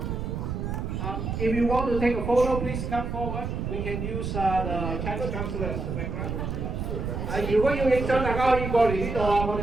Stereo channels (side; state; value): right; noise; rumble, 3 dB below the sound